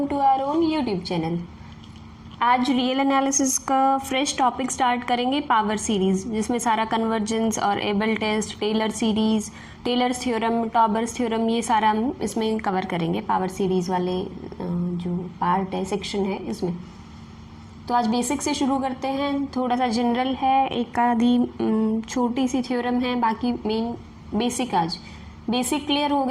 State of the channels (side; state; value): both; identical; correlation 1.00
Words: to our own YouTube channel. आज real analysis का fresh topic start करेंगे, power series, जिसमें सारा कन्वर्जेंस और Abel test, Taylor series, Taylor's theorem, Tauber's theorem, ये सारा हम इसमें कवर करेंगे। पावर सीरीज़ वाले जो पार्ट है, सेक्शन है इसमें। तो आज बेसिक से शुरू करते हैं। थोड़ा सा जनरल है, एक आधी छोटी सी थ्योरम है, बाकी मेन बेसिक। आज बेसिक क्लियर हो